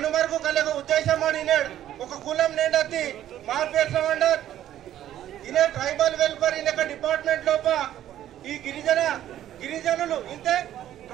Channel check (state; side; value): quieter; left; 12.0 dB